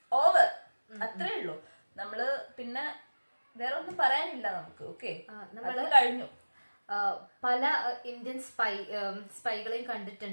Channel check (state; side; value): inverted; both; correlation -1.00